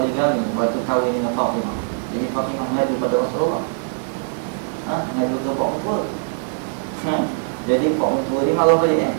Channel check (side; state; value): left; silent; digital silence